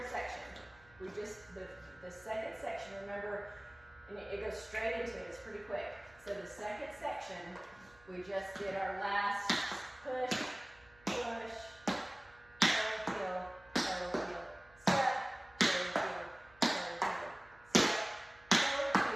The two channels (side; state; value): right; noise; hum, 27 dB below the sound